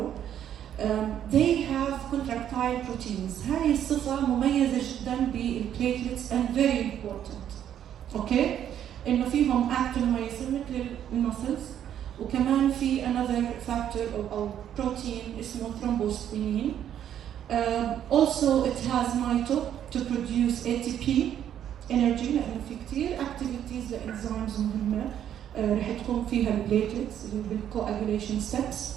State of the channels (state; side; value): quieter; left; 10.1 dB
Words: They have contractile proteins. هاي الصفة مميزة جدا بالplatelets and very important. Okay? إنه فيهم actin-myosin مثل المسلز، وكمان في another factor أو protein اسمه thrombosplenin. Also it has mito to produce ATP energy لأنه في كتير activities لإنزيمز مهمة رح تكون فيها البليتلتس اللي هو بالcoagulation steps.